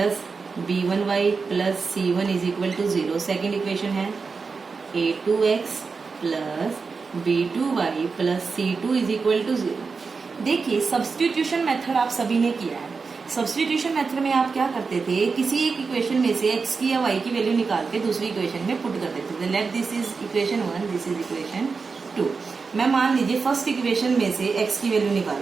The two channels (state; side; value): quieter; left; 4.8 dB